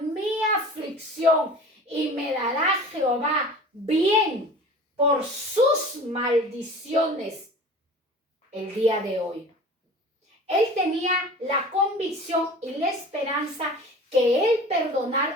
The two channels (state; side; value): normal; both; correlation 0.40